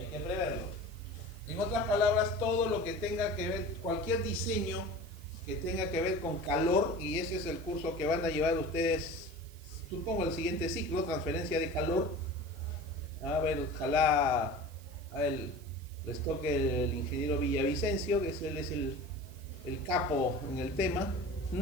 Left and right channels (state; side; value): noise; right; hiss, 23 dB below the sound